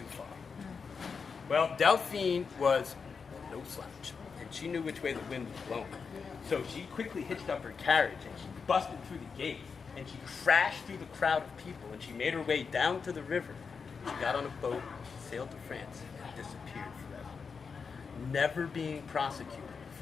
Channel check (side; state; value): right; quieter; 5.5 dB